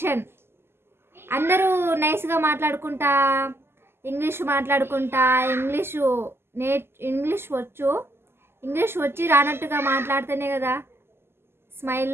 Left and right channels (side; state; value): left; late; 0.12 ms